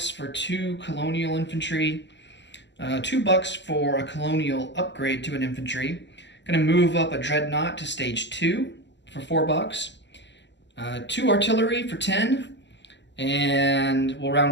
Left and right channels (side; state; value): right; late; 0.52 ms